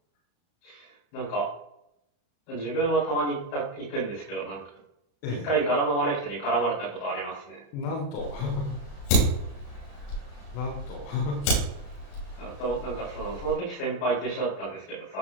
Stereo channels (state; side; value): late; right; 35 ms